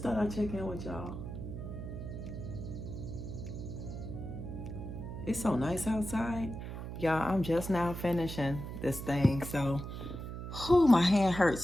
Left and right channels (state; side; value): noise; right; hum, 7 dB below the sound